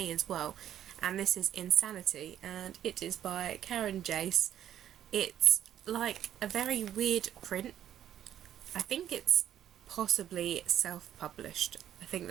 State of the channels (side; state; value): left; quieter; 10.8 dB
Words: as well, and this is Insanity, and it is by Karen Jace. It's like a very weird print. I think it's possibly self-published. I think